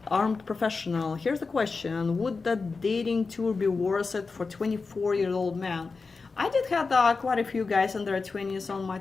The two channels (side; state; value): right; quieter; 4.4 dB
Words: Armed Professional. Here's the question: would the dating tour be worth it for 24-year-old man? I did have quite a few guys in their 20s on my